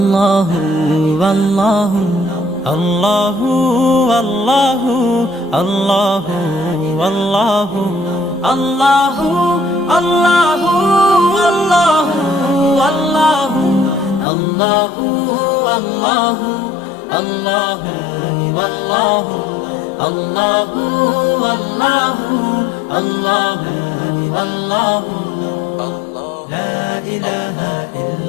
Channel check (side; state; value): right; drops out; at 14.2 s